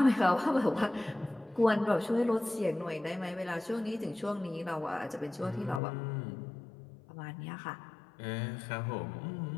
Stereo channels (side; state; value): right; drops out; at 5.8 s